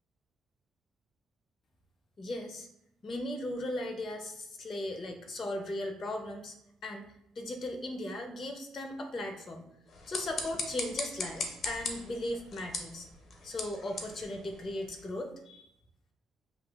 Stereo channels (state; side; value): normal; both; correlation 0.79